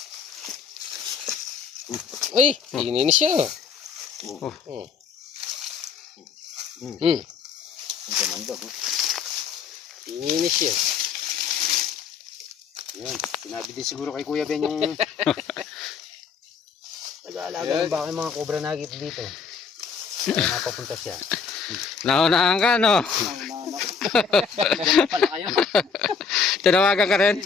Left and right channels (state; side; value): quieter; right; 5.9 dB